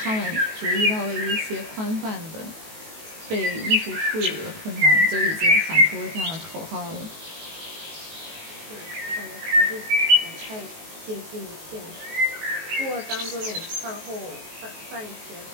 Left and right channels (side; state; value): left; late; 19 ms